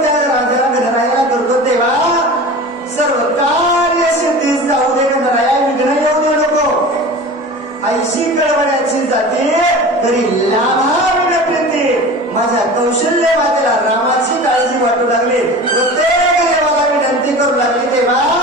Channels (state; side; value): normal; both; correlation 0.35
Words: त्या राजाला गणरायाला करतो, तेव्हा सर्व कार्य सिद्धीस जाऊ दे, गणराया विघ्न येऊ दे नको. ऐशी कळवण्याची जाते तरी लाभा विनप्रीती. माझ्या कौशल्य मातेला रामाची काळजी वाटू लागली, प्रत्येक देवाला विनंती करू लागली, तेव्हा